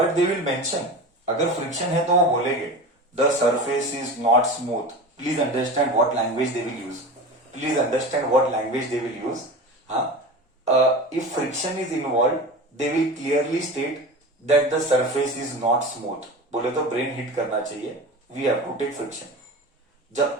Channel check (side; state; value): both; normal; correlation 0.31